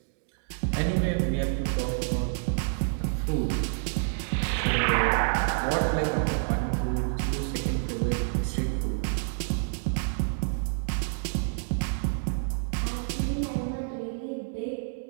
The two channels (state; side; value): silent; left; digital silence